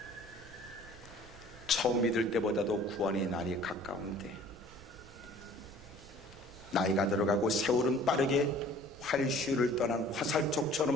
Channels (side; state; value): right; noise; rumble, 20 dB below the sound